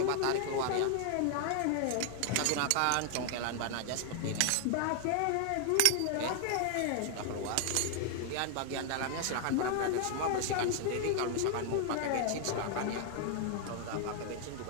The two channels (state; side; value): different; both; correlation 0.00